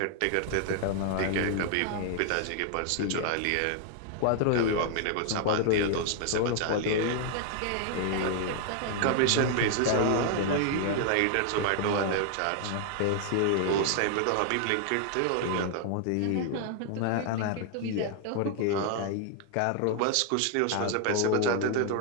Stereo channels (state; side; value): different; both; correlation 0.00